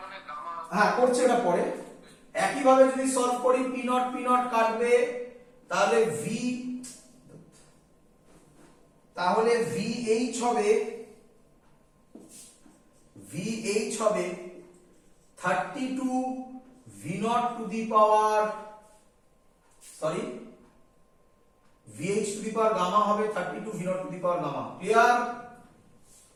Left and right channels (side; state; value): both; identical; correlation 1.00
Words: হ্যাঁ করছে এটা পরে। একই ভাবে যদি সলভ করি P নট কাটবে, তাহলে VH হবে 32 V not to the power, sorry VH to the power gamma হবে 32 V not to the power gamma. Clear?